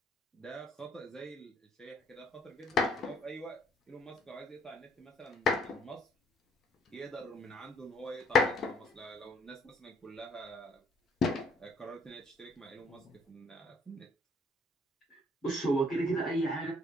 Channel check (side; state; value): both; normal; correlation 0.63